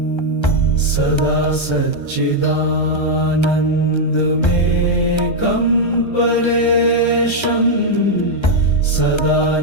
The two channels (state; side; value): late; right; 1.3 ms